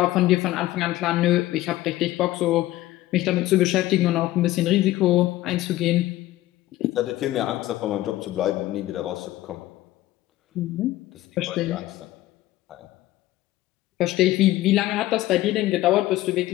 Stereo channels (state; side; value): quieter; right; 16.0 dB